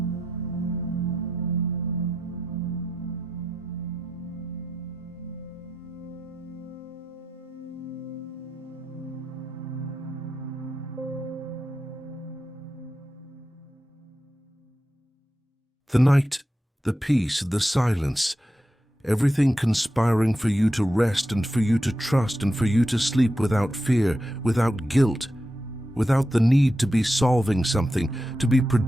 The night, the peace, the silence, everything conspiring for you to rest and for you to trust and for you to sleep without fear, without guilt, without the need to be solving something, to be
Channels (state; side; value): normal; both; correlation 0.88